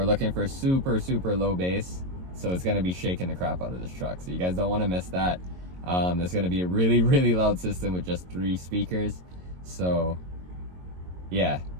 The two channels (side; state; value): left; late; 22 ms